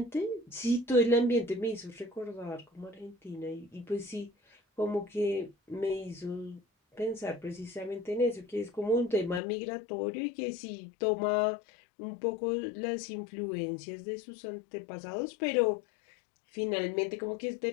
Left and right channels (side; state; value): right; drops out; at 9.4 s